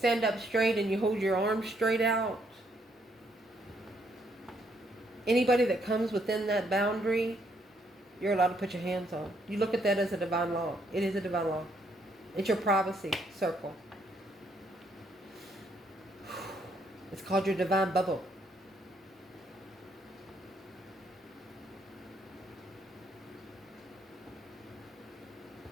up straight and you hold your arms straight out. Anybody that comes within that boundary, you're allowed to put your hands on. You look at that as a divine law. It is a divine law. It's your privacy circle. It's called your divine bubble.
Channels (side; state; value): both; normal; correlation 0.72